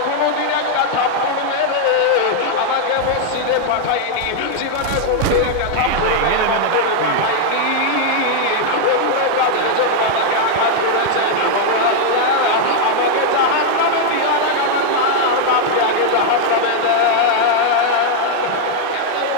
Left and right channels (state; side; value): different; both; correlation 0.00